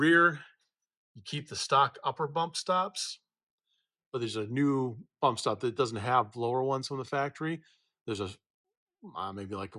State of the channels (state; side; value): identical; both; correlation 1.00